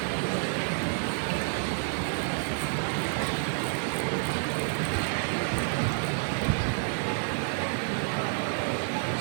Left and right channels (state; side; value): silent; left; digital silence